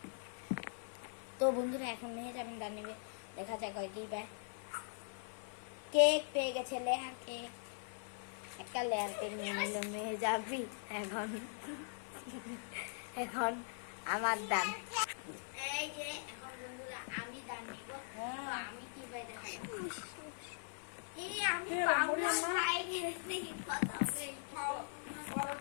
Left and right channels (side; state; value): right; silent; 50 dB below the other